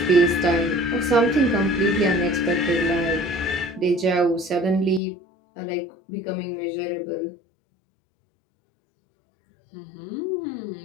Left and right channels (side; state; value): right; drops out; at 5.0 s